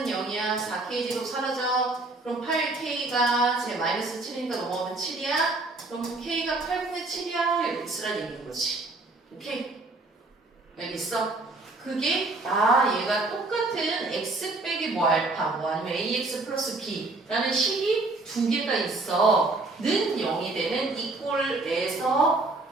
0이야. 4k제곱 사라져. 그럼 8k가 제 마이너스 7이니까 넘어가면 7이야. 그럼 k가 8분의 7이야. 이렇게 쓰라는 얘기인 거지. 오케이? 알겠어? 그게 얘가 똑같은 x 빼기 뭐 알파 뭐 아니면 ax 플러스 b라는 식이 두 개가 있어. 는 0이 되는 이 꼴에서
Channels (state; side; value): quieter; left; 3.2 dB